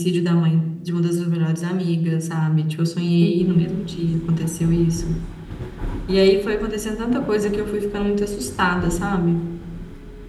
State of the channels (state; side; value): identical; both; correlation 1.00